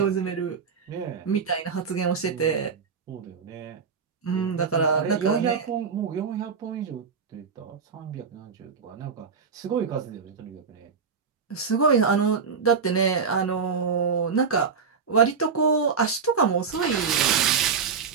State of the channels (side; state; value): left; quieter; 5.8 dB